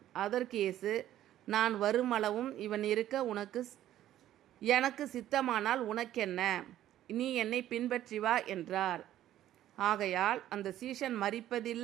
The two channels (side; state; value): left; quieter; 12.7 dB